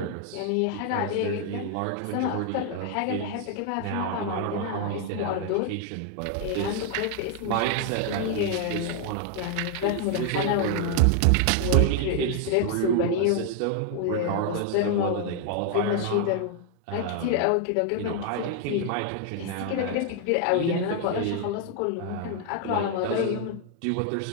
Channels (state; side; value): different; both; correlation 0.00